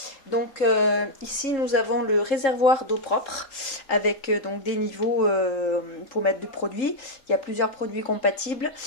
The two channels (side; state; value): right; late; 3.8 ms